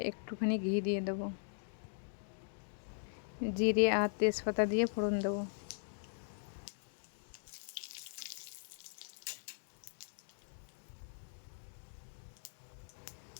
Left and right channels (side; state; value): right; silent; digital silence